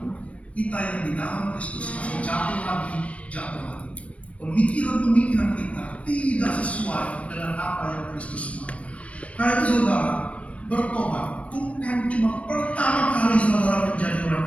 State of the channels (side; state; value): right; late; 0.064 ms